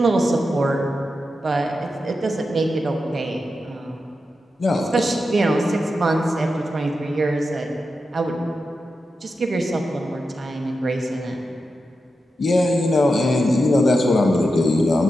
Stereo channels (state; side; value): normal; both; correlation 0.89